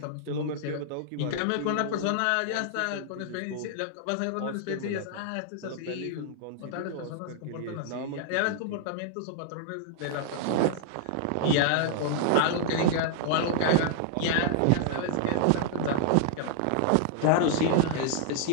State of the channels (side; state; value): both; different; correlation -0.01